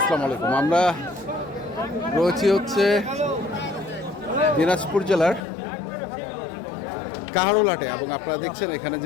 আলাইকুম। আমরা রয়েছি হচ্ছে দিনাজপুর জেলার কাহারোলহাটে এবং আপনারা দেখছেন এখানে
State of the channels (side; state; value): right; drops out; at 5.4 s